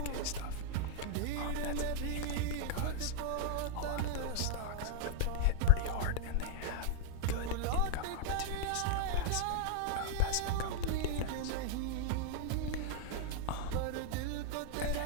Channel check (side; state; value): both; different; correlation 0.00